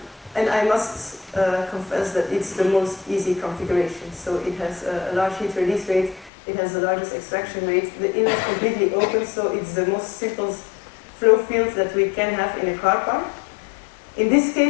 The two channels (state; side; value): drops out; right; at 6.3 s